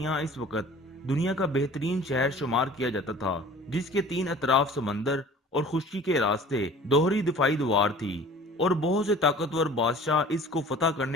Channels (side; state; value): both; normal; correlation 0.46